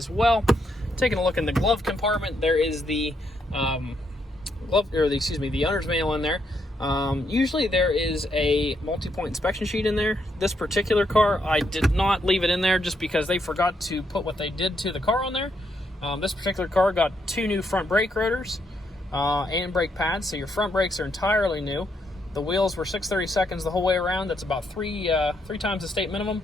well. Taking a look in the glove compartment, there is the the owner's manual in there. Usually there is a multi-point inspection sheet in there. This particular car, I did not leave it in there just because they forgot to put what they did to the car on there. This particular car got 2 new front brake rotors and brake pads, so your front brakes are entirely new. The wheels were 6/32 the whole way around. That's about three times the state minimum.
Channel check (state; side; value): normal; both; correlation 0.77